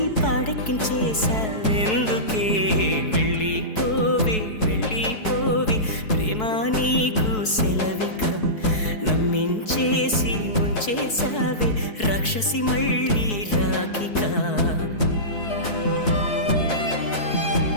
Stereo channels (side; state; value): right; late; 4.6 ms